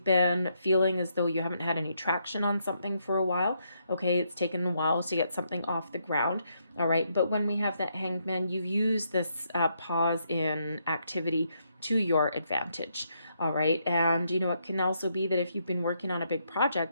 been feeling as though you haven't had any traction on something for a while. Okay, it's taken a while to get something off the ground. All right, but when we have that Hanged Man, you've used this pause in activity to your advantage. All right, and it can also be that if you've been working on a big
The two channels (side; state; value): both; inverted; correlation -0.77